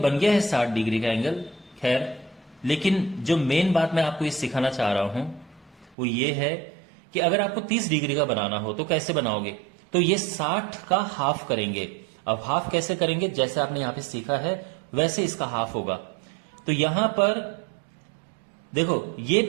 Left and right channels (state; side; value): drops out; left; at 6.0 s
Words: गया है 60 डिग्री का एंगल। खैर, लेकिन जो मेन बात मैं आपको ये सिखाना चाह रहा हूं वो ये है कि अगर आपको 30 डिग्री का बनाना हो तो कैसे बनाओगे? तो ये 60 का हाफ करेंगे। अब हाफ कैसे करेंगे? जैसे आपने यहां पे सीखा है वैसे इसका हाफ होगा। तो यहां पर देखो, ये